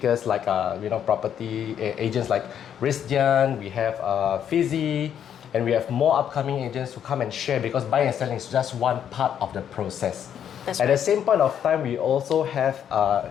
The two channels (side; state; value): right; quieter; 9.1 dB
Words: like property agents like Rizdian, we have Fizzy, and we have more upcoming agents who come and share because buying and selling is just one part of the process. That's At right. the same point of time, we also have